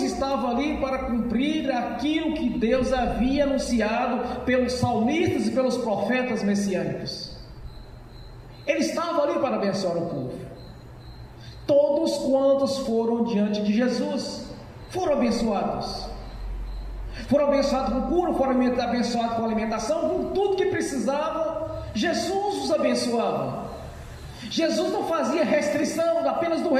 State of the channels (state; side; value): identical; both; correlation 1.00